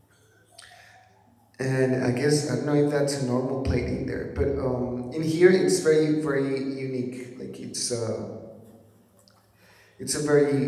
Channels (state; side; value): identical; both; correlation 1.00